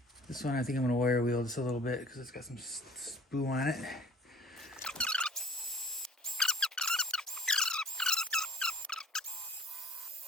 This one I think I'm going to wire wheel just a little bit because it's got some spoo on it.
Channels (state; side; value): normal; both; correlation 0.50